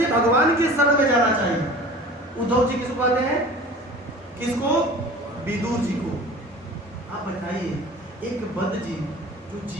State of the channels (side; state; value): both; normal; correlation 0.41